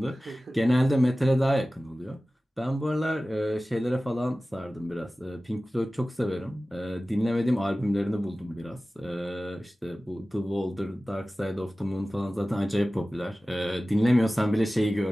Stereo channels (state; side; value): normal; both; correlation 0.96